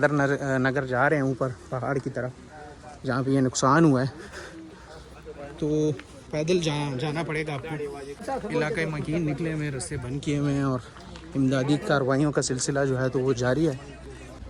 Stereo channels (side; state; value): both; identical; correlation 1.00